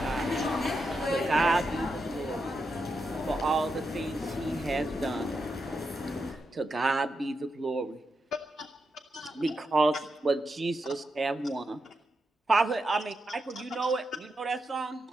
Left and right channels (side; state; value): both; normal; correlation 0.85